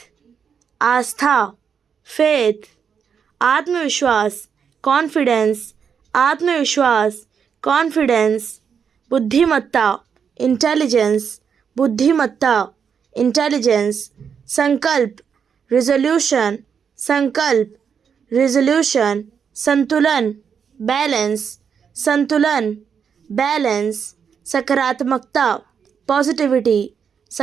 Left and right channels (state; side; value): quieter; left; 7.0 dB